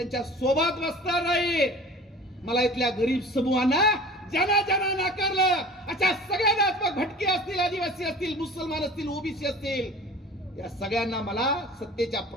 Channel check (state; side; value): normal; both; correlation 0.42